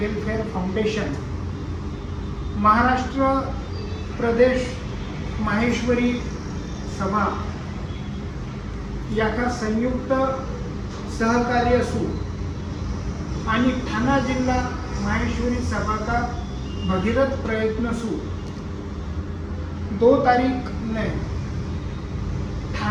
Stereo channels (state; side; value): identical; both; correlation 1.00